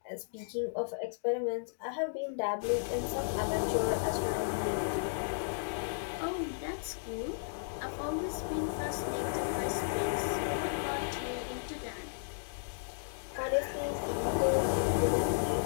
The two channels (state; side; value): silent; right; digital silence